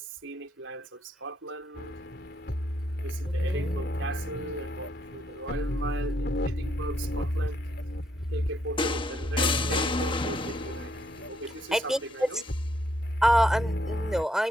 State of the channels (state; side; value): normal; both; correlation 0.74